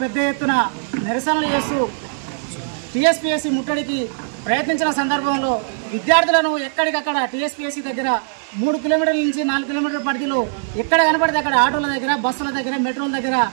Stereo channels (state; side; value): silent; left; 61 dB below the other